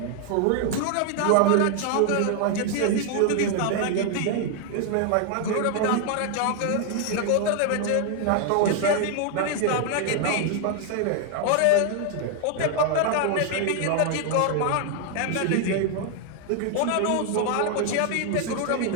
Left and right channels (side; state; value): both; different; correlation 0.00